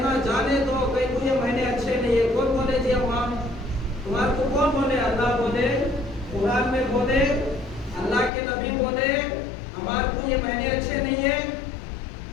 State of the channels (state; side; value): drops out; right; at 8.3 s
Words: جانے دو، کہیں کو یہ مہینے اچھے نہیں ہے۔ کون بولے جی اماں تمہارے کو کون بولے؟ اللہ بولے، قرآن میں بولے، اللہ کے نبی بولے ہمارے کو یہ مہینے اچھے نہیں ہے۔